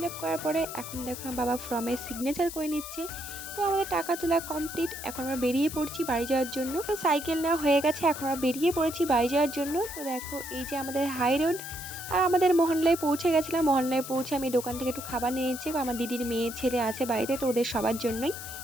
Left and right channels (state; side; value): noise; left; hiss, 10 dB below the sound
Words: আপ করার পরে এখন দেখো আমার বাবা ফর্মে সিগনেচার করে নিচ্ছে। তো আমাদের টাকা তোলা কমপ্লিট, এখন আমরা বেরিয়ে পড়ছি বাড়ি যাওয়ার জন্য। তো সাইকেল নেওয়া হয়ে গেছে, এখন আমরা বেরিয়ে পড়েছি বাড়ি যাওয়ার জন্য। তো দেখো এই যে আমাদের হাই রোড, আর আমাদের মহল্লায় পৌঁছে গেছিলাম। মহল্লায় পৌঁছে আমি দোকান থেকে একটু খাবার নিয়ে নিচ্ছি, আমার দিদির মেয়ে ছেলে আছে বাড়িতে, তো ওদের সবার জন্যই।